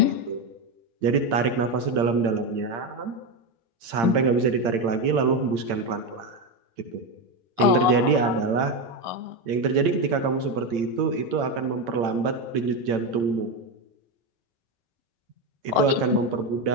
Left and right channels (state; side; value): late; left; 8.6 ms